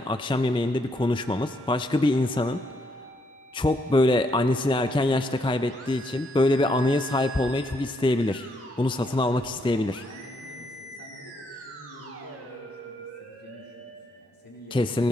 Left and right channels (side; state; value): both; normal; correlation 0.74